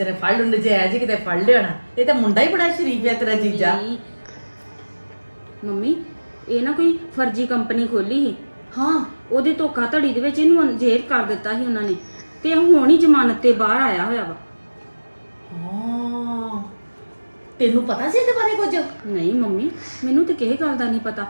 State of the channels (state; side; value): inverted; both; correlation -1.00